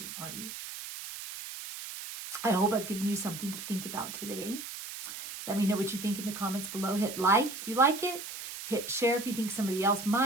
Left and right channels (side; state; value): right; noise; hiss, 9 dB below the sound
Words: are you? I hope I've given you something to think about today. Let me know what you think in the comments below. Hit like if you like it. Hit share if you think somebody else